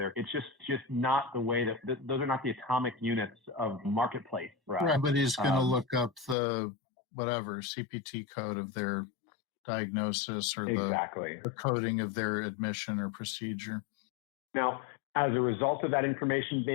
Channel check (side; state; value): right; drops out; at 6.4 s